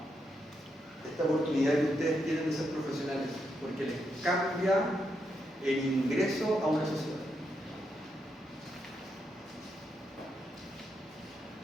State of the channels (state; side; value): normal; both; correlation 0.81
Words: oportunidad que ustedes tienen de ser profesionales, porque les cambia el ingreso a una sociedad.